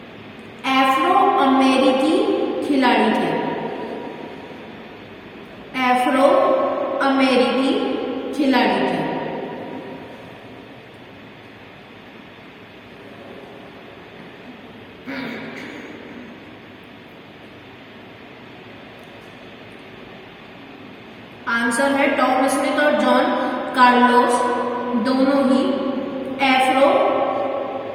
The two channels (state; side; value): identical; both; correlation 1.00